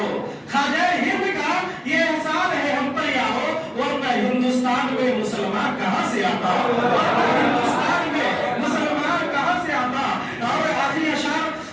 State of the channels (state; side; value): identical; both; correlation 1.00